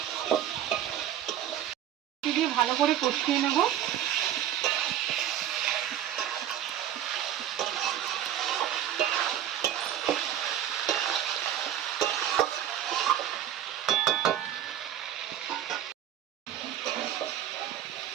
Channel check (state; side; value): quieter; left; 11.2 dB